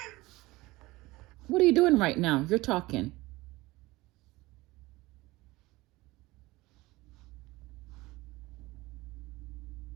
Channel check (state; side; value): quieter; left; 20.3 dB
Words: What are you doing right now? You're talking.